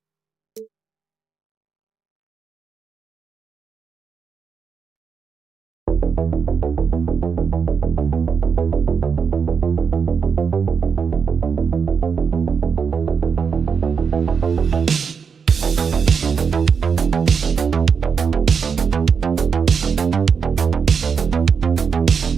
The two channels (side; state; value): left; quieter; 6.1 dB